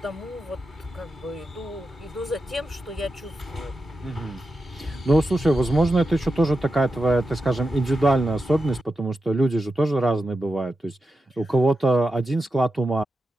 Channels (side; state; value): both; normal; correlation 0.90